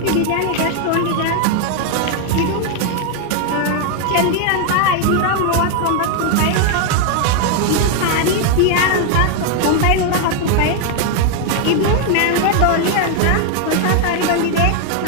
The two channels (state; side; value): different; both; correlation 0.01